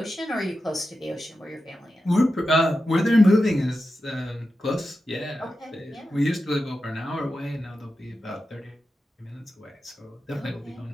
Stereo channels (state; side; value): normal; both; correlation 0.91